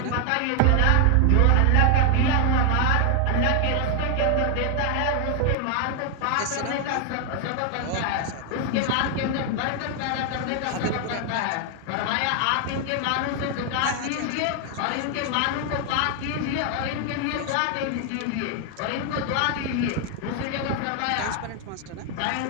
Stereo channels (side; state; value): both; different; correlation 0.00